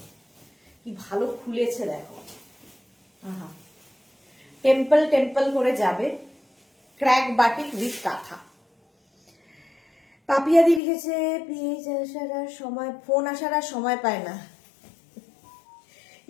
কি ভালো খুলেছে দেখো, আহা টেম্পল টেম্পল করে যাবে। ক্র্যাক বাটিক উইথ কাঁথা। পাপিয়াদি লিখেছে পেজ আসার আর সময়, ফোন আসার আর সময় পায় না।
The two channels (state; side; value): drops out; right; at 10.8 s